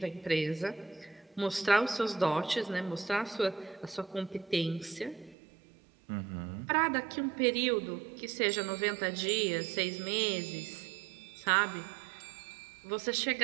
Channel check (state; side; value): drops out; left; at 5.4 s